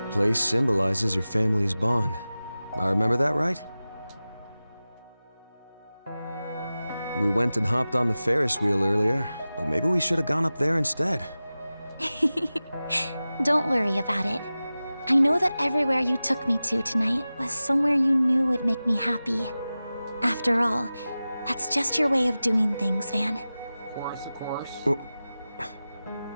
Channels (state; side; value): inverted; both; correlation -0.96